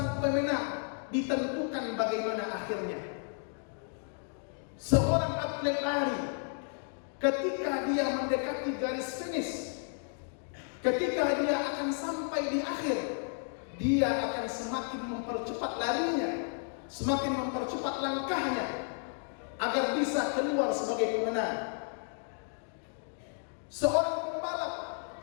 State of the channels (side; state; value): right; silent; 55 dB below the other